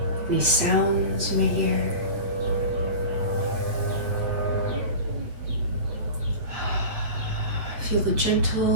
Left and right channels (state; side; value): late; left; 8.5 ms